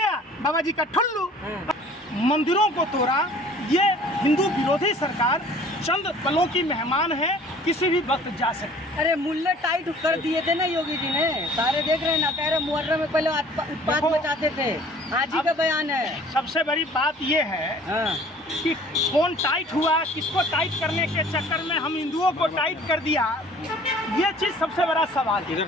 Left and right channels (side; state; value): both; normal; correlation 0.51